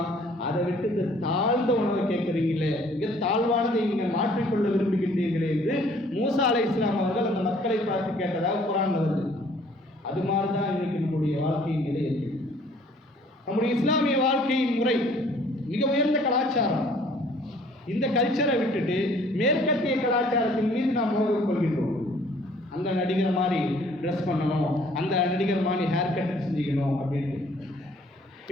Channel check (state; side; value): normal; both; correlation 0.58